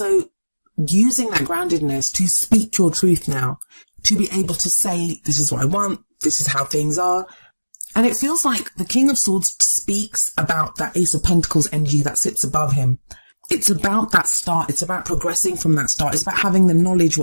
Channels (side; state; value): both; inverted; correlation -1.00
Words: using that groundedness to speak your truth now, to be able to say, this is what I want, this is how things are. And it feels like the King of Swords speaks about that Ace of Pentacles energy that sits above him. It's about that start. It's about progressing from that start. It's about having the knowledge